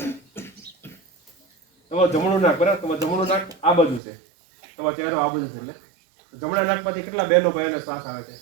તમારું જમણું નાક. બરાબર. તમારું જમણું નાક આ બાજુ છે, તમારો ચહેરો આ બાજુ છે. એટલે જમણા નાક પરથી કેટલા બહેનો ભાઈઓને શ્વાસ આવે છે?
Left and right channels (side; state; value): left; drops out; at 4.0 s